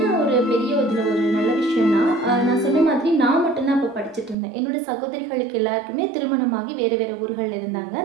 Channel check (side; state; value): left; drops out; at 4.4 s